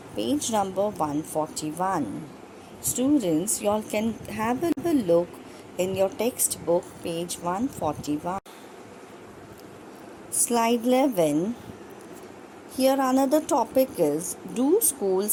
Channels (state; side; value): identical; both; correlation 1.00